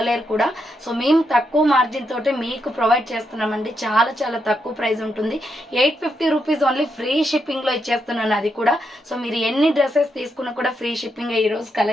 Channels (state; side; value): normal; both; correlation 0.81